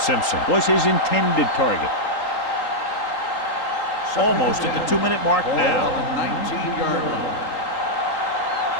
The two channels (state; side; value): late; right; 3.8 ms